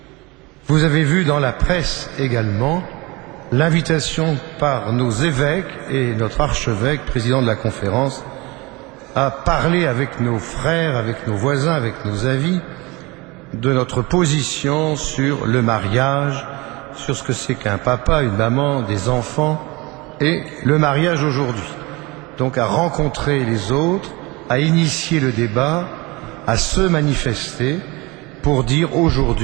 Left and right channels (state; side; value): quieter; left; 24.2 dB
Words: Vous avez vu dans la presse également l'invitation par nos évêques et notre archevêque, président de la conférence, à parler avec nos frères, avec nos voisins, avec nos amis, de notre position sur le mariage, sur ce que c'est qu'un papa, une maman, des enfants, et le mariage aujourd'hui. Donc à rencontrer les autres, à initier le débat, à se manifester pour dire